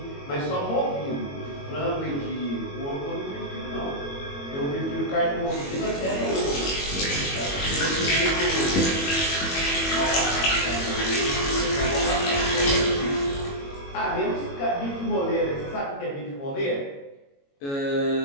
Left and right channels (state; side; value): late; right; 21 ms